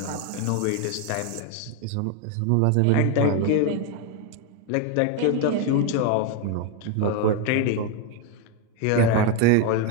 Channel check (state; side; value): different; both; correlation 0.01